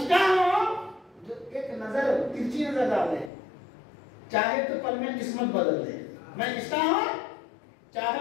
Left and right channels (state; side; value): drops out; right; at 3.3 s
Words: کا ہوں جو ایک نظر ترچی نظر ڈال دے، چاہے تو پل میں قسمت بدل دے. میں کس کا ہوں؟